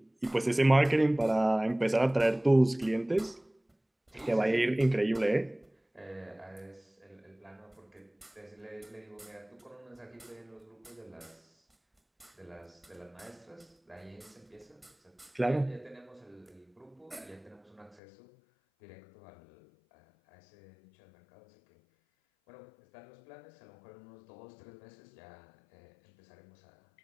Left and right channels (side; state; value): right; drops out; at 18.0 s